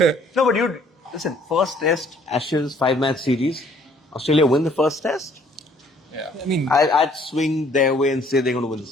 No, but listen, first test, Ashes, 5-match series, Australia win the first test. Yeah. I mean, I'd swing their way and say they're going to win the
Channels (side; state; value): both; normal; correlation 0.61